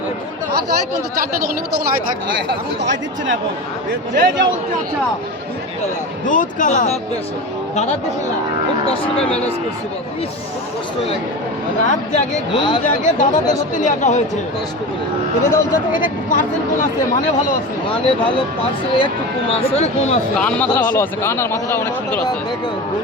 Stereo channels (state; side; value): normal; both; correlation 0.27